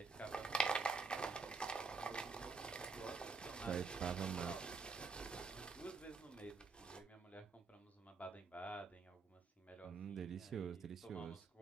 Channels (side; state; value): left; quieter; 4.5 dB